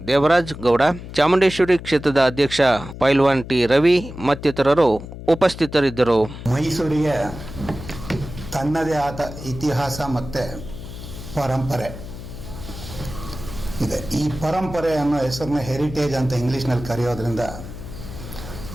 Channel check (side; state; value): left; noise; hum, 12 dB below the sound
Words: ದೇವರಾಜ್ ಗೌಡ, ಚಾಮುಂಡೇಶ್ವರಿ ಕ್ಷೇತ್ರದ ಅಧ್ಯಕ್ಷ ಪೈಲ್ವಾನ್ ಟಿ ರವಿ ಮತ್ತಿತರರು ಉಪಸ್ಥಿತರಿದ್ದರು. ಮೈಸೂರಿಗೆ ತನ್ನದೇ ಆದ ಇತಿಹಾಸ ಮತ್ತು ಪರಂಪರೆ ಇದೆ. ಈ ಪರಂಪರೆ ಅನ್ನೋ ಹೆಸರನ್ನ ಹೆರಿಟೇಜ್ ಅಂತ ಇಂಗ್ಲೀಷ್ನಲ್ಲಿ ಕರೆಯೋದ್ರಿಂದ